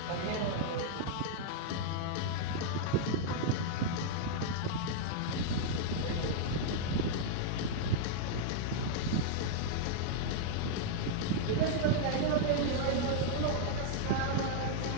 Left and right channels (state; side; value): different; both; correlation -0.01